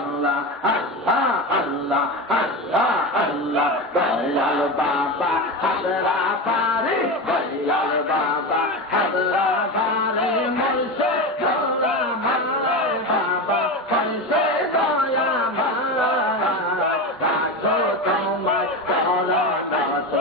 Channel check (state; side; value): normal; both; correlation 0.21